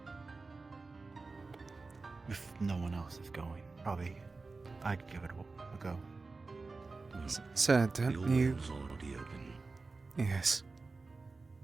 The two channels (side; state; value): left; quieter; 3.9 dB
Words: If no one else is going, probably I'd give it a go. Sir, don't Your you... wind's already open. Yes.